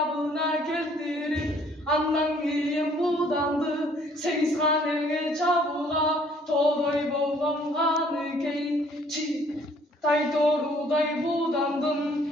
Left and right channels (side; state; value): both; normal; correlation 0.60